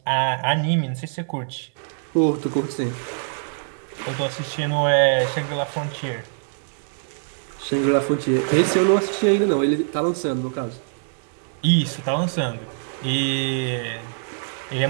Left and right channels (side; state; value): left; silent; 62 dB below the other